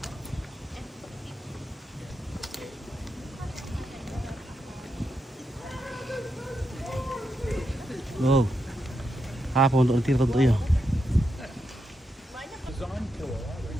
Oh, apa untuk nanti tentunya?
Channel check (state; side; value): normal; both; correlation 0.84